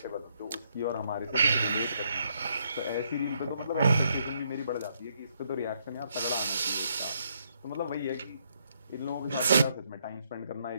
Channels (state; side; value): inverted; both; correlation -0.74